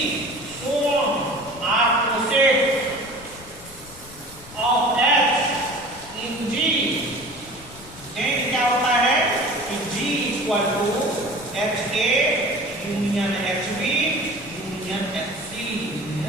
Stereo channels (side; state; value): left; noise; rumble, 20 dB below the sound